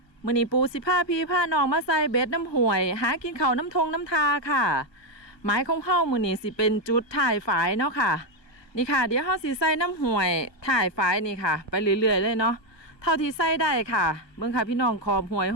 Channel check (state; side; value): late; right; 1.2 ms